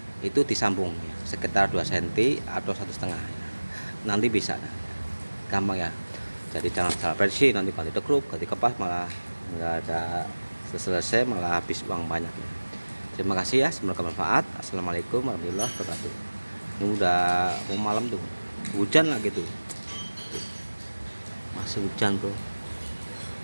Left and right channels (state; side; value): inverted; both; correlation -1.00